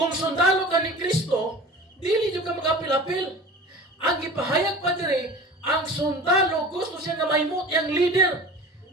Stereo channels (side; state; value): both; normal; correlation 0.38